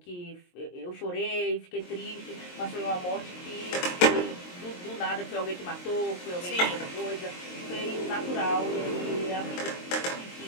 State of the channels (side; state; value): right; late; 22 ms